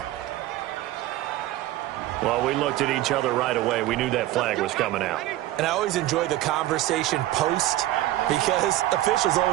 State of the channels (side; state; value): left; quieter; 15.4 dB